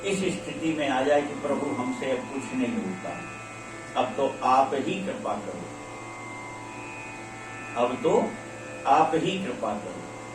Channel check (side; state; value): both; identical; correlation 1.00